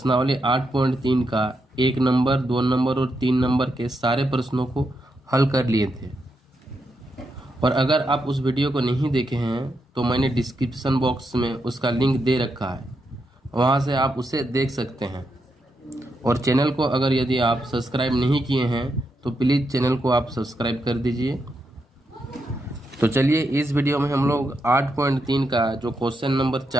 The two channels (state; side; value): normal; both; correlation 0.83